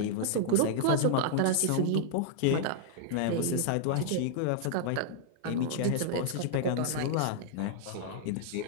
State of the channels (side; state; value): both; different; correlation -0.01